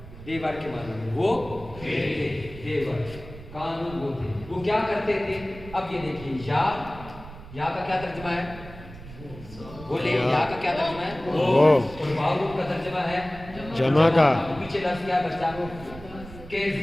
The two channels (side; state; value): right; noise; rumble, 16 dB below the sound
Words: دیور کے معنی میں وہ تھے. دیور. قانون وہ تھے. وہ کیا کرتے تھے؟ اب یہ دیکھیے یا کا کیا ترجمہ ہے؟ بولے یا کا کیا ترجمہ ہے؟ وہ. اور واو کا ترجمہ ہے جمع کا. پیچھے لفظ کیا بچا؟